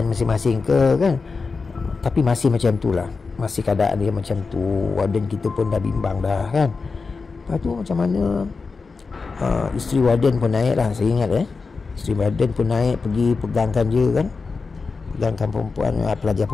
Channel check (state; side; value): quieter; right; 4.5 dB